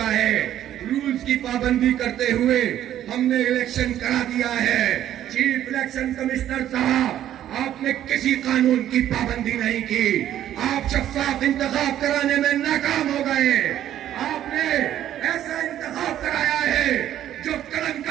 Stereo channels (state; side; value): quieter; left; 11.7 dB